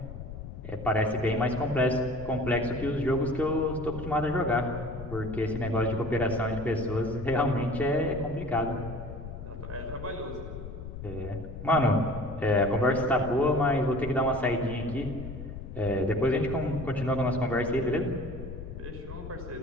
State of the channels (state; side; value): noise; left; rumble, 10 dB below the sound